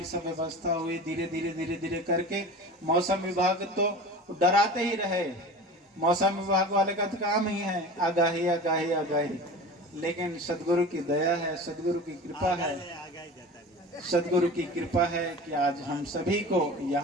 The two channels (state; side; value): normal; both; correlation 0.35